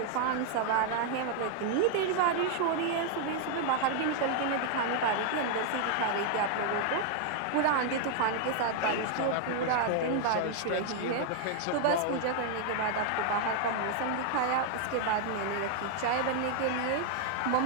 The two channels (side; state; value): both; different; correlation 0.00